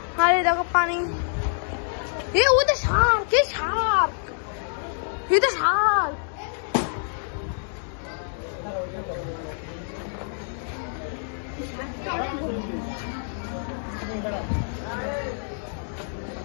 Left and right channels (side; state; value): right; silent; 61 dB below the other